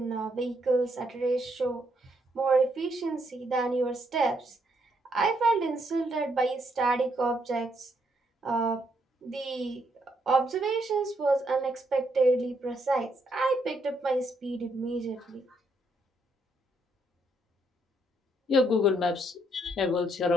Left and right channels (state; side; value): normal; both; correlation 0.74